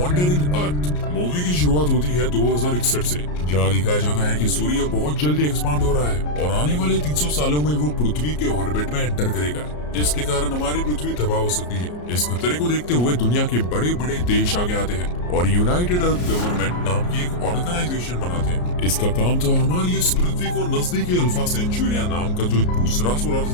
अर्थ। मूवी की शुरुआत होती है 2061 से, जहाँ दिखाया जाता है कि सूर्य बहुत जल्दी एक्सपांड हो रहा है और आने वाले 300 सालों में वो पृथ्वी के ऑर्बिट में एंटर करेगा, जिसके कारण हमारी पृथ्वी तबाह हो सकती है। इस खतरे को देखते हुए दुनिया के बड़े बड़े देश आगे आते हैं और यूनाइटेड अर्थ गवर्नमेंट नाम की एक ऑर्गेनाइजेशन बनाते हैं। इसका काम था हमारी इस पृथ्वी को नजदीकी अल्फा सेंचुरिया नाम का जो दूसरा सोलर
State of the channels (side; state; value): right; late; 34 ms